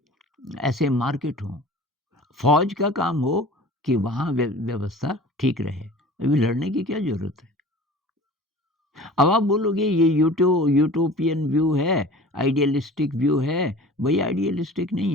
ऐसे मार्केट हों। फ़ौज का काम हो कि वहाँ व्यवस्था ठीक रहे। अभी लड़ने की क्या ज़रूरत है? अब आप बोलोगे ये यूटोपियन व्यू है, आइडियलिस्टिक व्यू है। भई आइडियलिस्टिक नहीं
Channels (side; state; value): both; normal; correlation 0.42